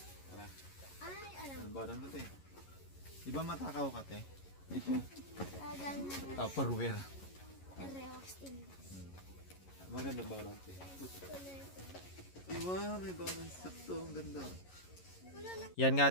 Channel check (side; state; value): right; late; 11 ms